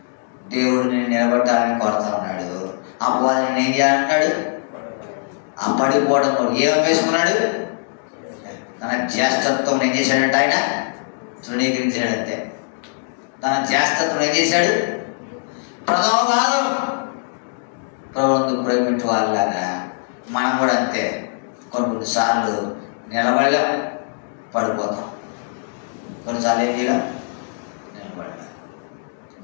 దేవుడిని నిలబెట్టాలని కోరుతా ఉన్నాడు. అపవాదిని ఏం చేయాలన్నాడు? ఆ పడిపోవడం ఏం వేసుకున్నాడు? తన జ్యేష్ఠత్వం ఏం చేశాడంటే ఆయన తృణీకరించాడంతే. తన జ్యేష్ఠత్వం ఏం చేశాడు? ప్రథమ భాగం. ప్రభువుకు ప్రేమించే వాళ్ళారా, మనం కూడా అంతే. కొన్నిసార్లు నిలబడలేం, పడిపోతాం. కొన్నిసార్లు ఏం చేయలేం,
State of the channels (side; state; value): right; silent; digital silence